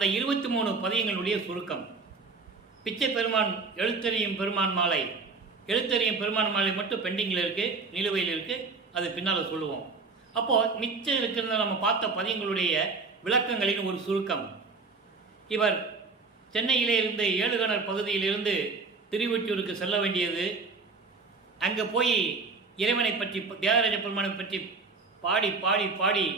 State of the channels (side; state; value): left; quieter; 4.3 dB